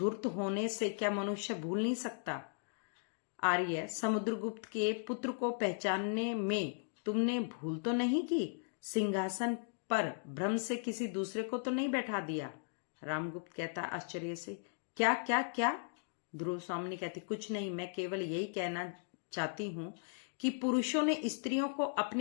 होने से क्या मनुष्य भूल नहीं सकता? आर्य, समुद्रगुप्त के पुत्र को पहचानने में तुमने भूल तो नहीं की? सिंहासन पर भ्रम से किसी दूसरे को तो नहीं बैठा दिया? रामगुप्त कहता आश्चर्य से, क्या क्या क्या? ध्रुव स्वामिनी कहती, कुछ नहीं, मैं केवल यही कहना चाहती हूँ कि पुरुषों ने स्त्रियों को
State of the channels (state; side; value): silent; right; digital silence